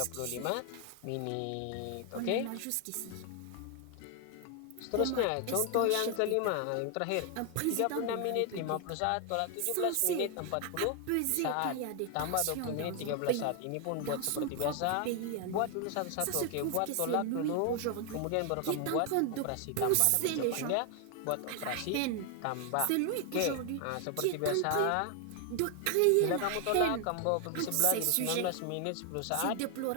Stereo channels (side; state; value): both; different; correlation 0.00